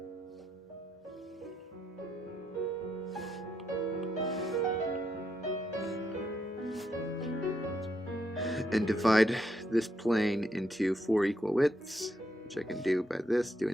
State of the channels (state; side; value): normal; both; correlation 0.78